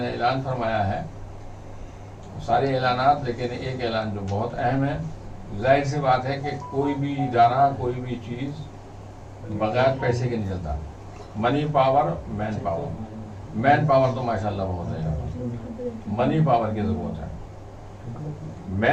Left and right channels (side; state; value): both; identical; correlation 1.00